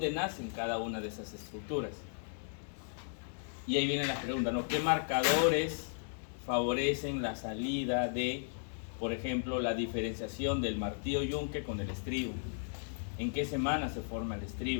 nacen cada una de esas estructuras? Y ahí viene la pregunta, ¿no? ¿Qué marcadores favorecen la salida de, por ejemplo, la diferenciación del martillo yunque con el estribo? ¿En qué semana se forma el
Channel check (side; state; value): right; silent; digital silence